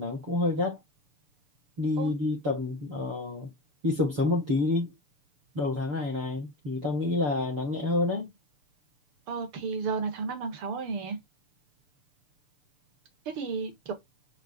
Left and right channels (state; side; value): late; left; 6.9 ms